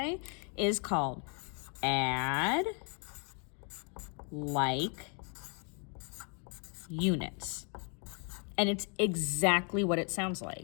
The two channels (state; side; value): quieter; right; 38.1 dB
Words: is called add like units. And it's exactly what it sounds